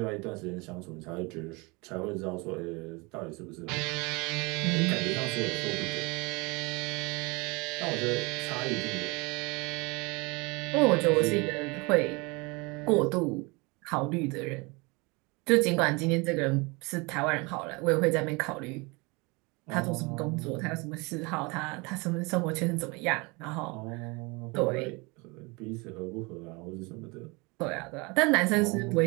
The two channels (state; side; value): quieter; left; 27.3 dB